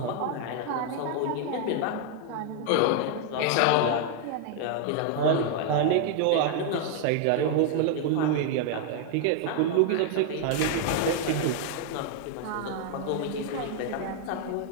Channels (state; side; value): different; both; correlation 0.00